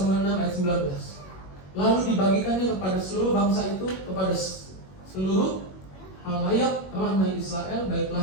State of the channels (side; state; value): right; late; 21 ms